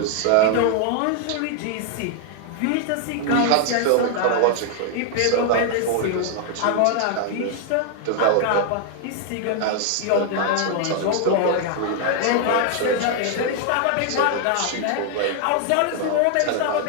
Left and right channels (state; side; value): different; both; correlation 0.00